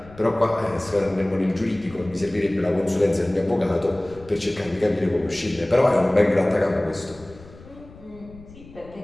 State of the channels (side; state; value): left; noise; rumble, 20 dB below the sound